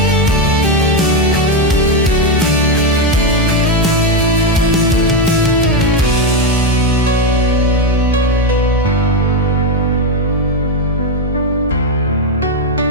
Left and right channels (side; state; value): both; normal; correlation 0.08